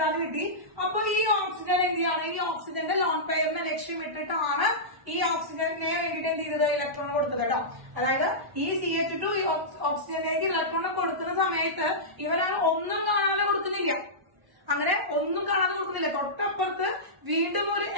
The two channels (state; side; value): late; left; 1.1 ms